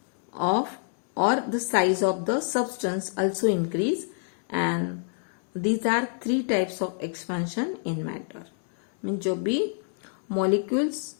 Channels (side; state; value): right; silent; 60 dB below the other